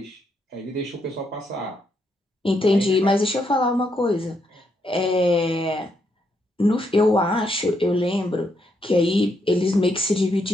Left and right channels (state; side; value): normal; both; correlation 0.78